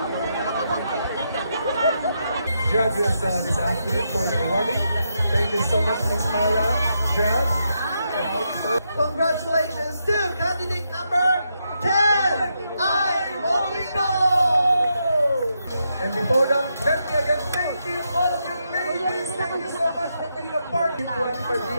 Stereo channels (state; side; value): inverted; both; correlation -0.82